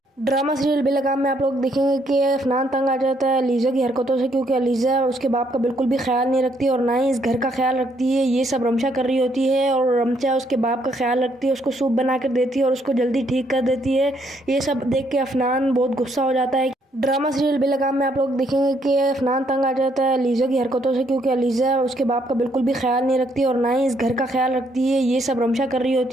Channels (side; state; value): both; normal; correlation 0.71